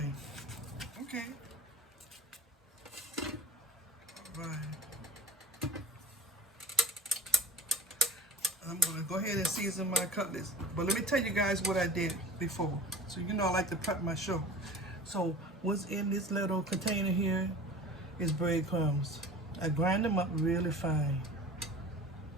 Okay. All right. I'm going to go ahead and season my cutlets. But let me tell you guys what I did before. So you know I like to prep my show. So what's in this little container here is breadcrumbs. I grind them up really fine.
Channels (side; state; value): both; normal; correlation 0.38